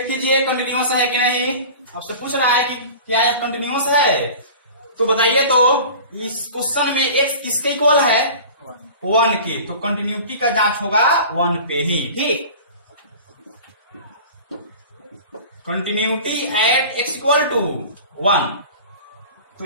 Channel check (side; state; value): both; inverted; correlation -0.39